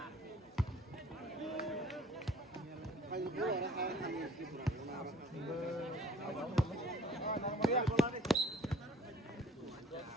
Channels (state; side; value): normal; both; correlation 0.55